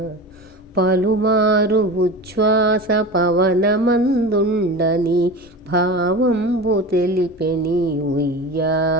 పలుమారు ఉచ్ఛ్వాస పవనమందుండ నీ భావంబు తెలిపెని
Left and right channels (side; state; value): both; normal; correlation 0.30